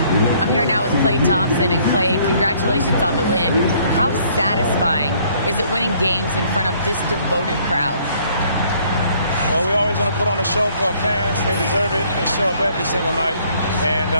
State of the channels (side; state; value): both; inverted; correlation -0.62